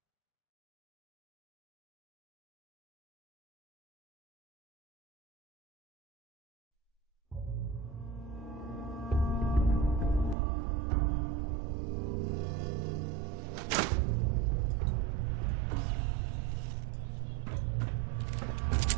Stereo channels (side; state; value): left; drops out; at 10.4 s